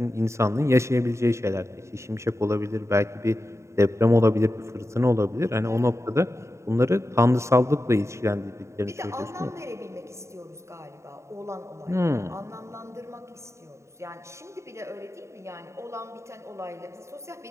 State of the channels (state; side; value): late; left; 0.14 ms